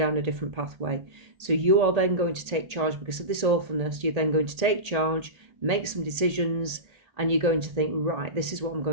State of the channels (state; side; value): late; left; 1.8 ms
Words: a different pathway. So you are then going to take charge because of this awfulness. You're then going to take charge, make some decisions, and you're going to think, right, this is what I'm